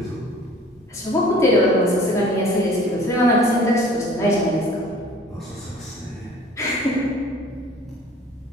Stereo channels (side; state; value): both; normal; correlation 0.49